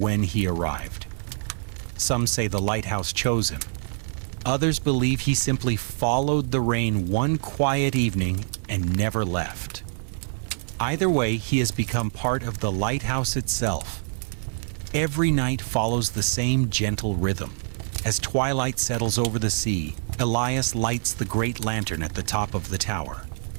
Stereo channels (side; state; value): left; silent; 61 dB below the other